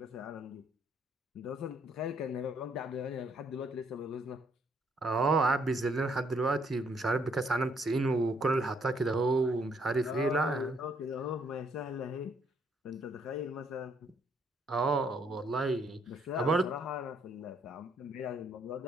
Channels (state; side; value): normal; both; correlation 0.69